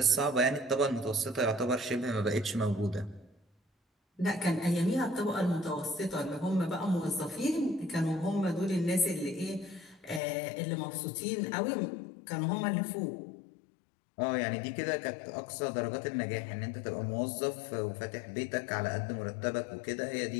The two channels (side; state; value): right; drops out; at 10.2 s